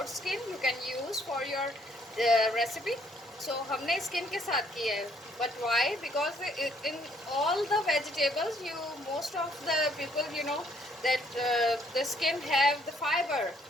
skin, you can use for your recipe. So हमने स्किन के साथ किया है, but why, because in all the vegetables you most of the people you know that the skin have the fiber,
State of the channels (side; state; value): both; normal; correlation 0.67